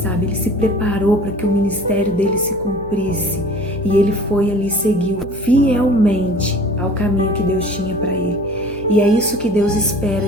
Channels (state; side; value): noise; left; hum, 17 dB below the sound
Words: ele se preparou para que o ministério dele se cumprisse e ele foi ali, seguiu fielmente ao caminho que Deus tinha para ele. E é isso que Deus